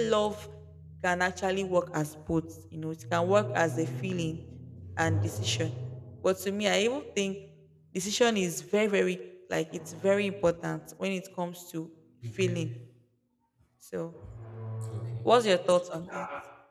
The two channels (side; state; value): both; identical; correlation 1.00